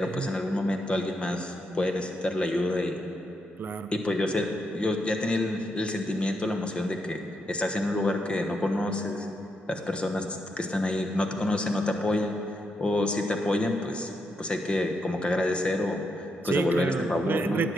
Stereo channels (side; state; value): both; normal; correlation 0.81